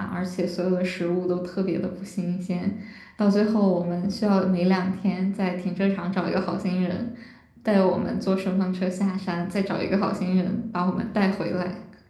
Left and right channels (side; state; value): both; identical; correlation 1.00